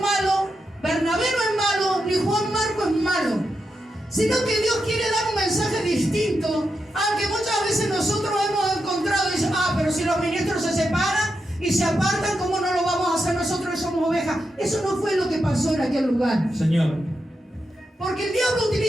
malo, Bernabé no es malo, ni Juan Marco es malo, sino que Dios quiere dar un mensaje distinto, aunque muchas veces nosotros hemos encontrado y dicen, pero si los ministros se separan y se apartan, ¿cómo no lo vamos a hacer nosotros que somos ovejas? Eso no fue lo que pasó en aquel lugar. Señor. Porque el diablo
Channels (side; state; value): both; normal; correlation 0.86